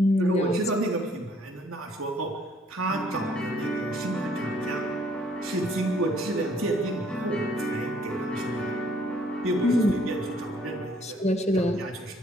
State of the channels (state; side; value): normal; both; correlation 0.63